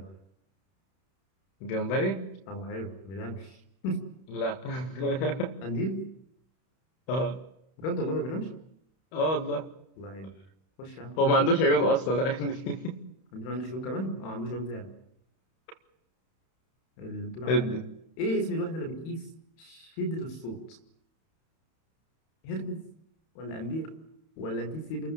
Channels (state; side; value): late; right; 31 ms